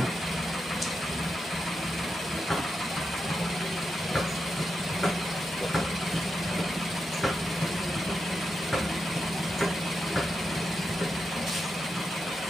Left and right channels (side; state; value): both; normal; correlation 0.87